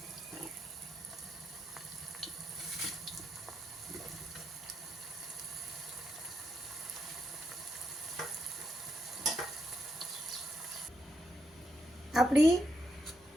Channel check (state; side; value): normal; both; correlation 0.82